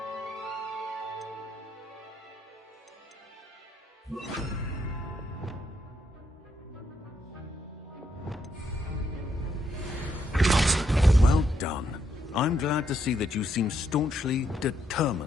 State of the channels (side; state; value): both; normal; correlation 0.76